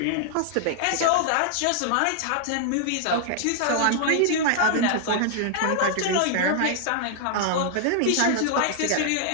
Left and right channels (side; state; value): both; different; correlation 0.00